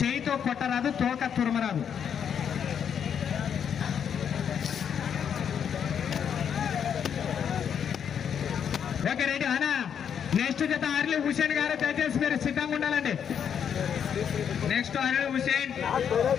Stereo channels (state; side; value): quieter; right; 8.0 dB